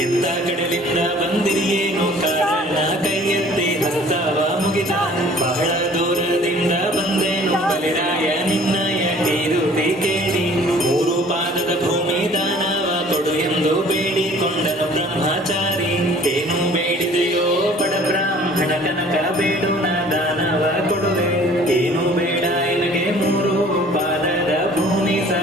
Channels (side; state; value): both; normal; correlation 0.52